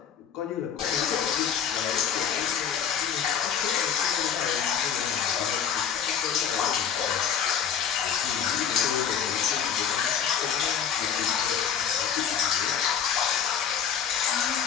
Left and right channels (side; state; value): right; quieter; 8.1 dB